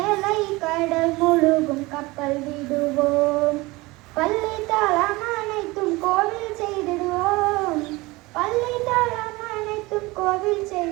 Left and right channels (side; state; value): left; quieter; 22.1 dB